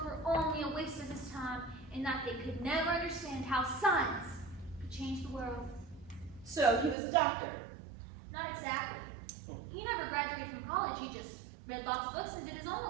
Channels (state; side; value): drops out; left; at 7.0 s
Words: were only a waste of his time and that they could never understand how science could change the world. So he was a doctor. Not exactly. He never graduated from college. He just read lots of books and did his own